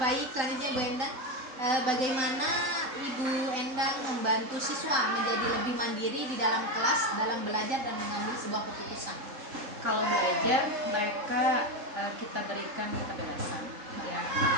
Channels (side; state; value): left; late; 3.7 ms